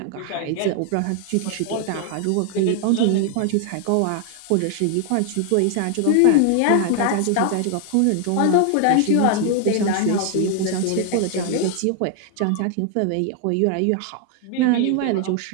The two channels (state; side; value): different; both; correlation 0.00